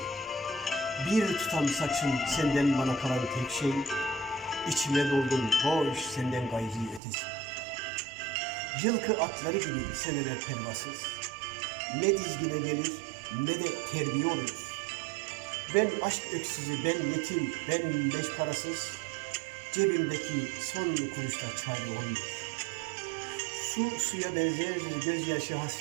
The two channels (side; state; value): left; drops out; at 7.0 s